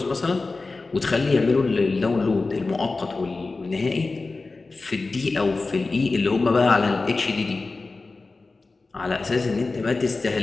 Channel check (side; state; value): right; quieter; 3.7 dB